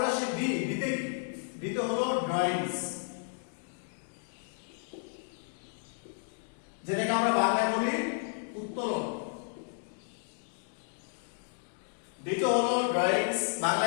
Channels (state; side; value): silent; right; 56 dB below the other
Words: আসে ডি, ডিতে কি? ডিতে হলো ড্রয়িংস, যেটাকে আমরা বাংলায় বলি উত্তোলন। ডিতে হলো ড্রয়িংস,